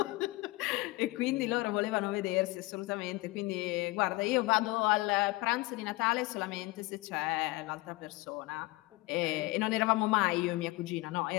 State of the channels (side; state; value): right; quieter; 21.7 dB